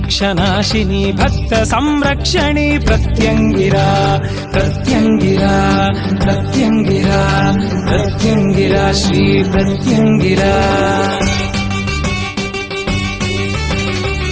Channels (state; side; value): identical; both; correlation 1.00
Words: భక్త సంరక్షణి ప్రత్యంగిరా ప్రత్యంగిరా ప్రత్యంగిరా ప్రత్యంగిరా శ్రీ ప్రత్యంగిరా.